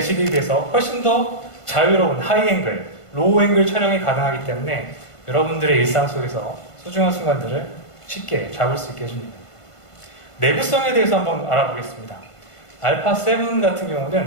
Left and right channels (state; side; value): late; right; 1.5 ms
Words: 비해서 훨씬 더 자유로운 하이앵글, 로우앵글 촬영이 가능하기 때문에 여러분들의 일상 속에서 소중한 순간들을 쉽게 잡을 수 있게 해줍니다. 내구성에 대해서 한번 알아보겠습니다. 알파 7 같은